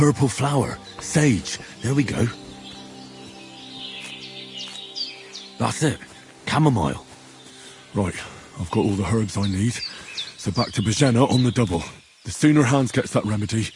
flower, sage, there we go. That's it, chamomile. Right, I've got all the herbs I need, so back to Bajena on the double. The sooner Hans gets that remedy,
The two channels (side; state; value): both; identical; correlation 1.00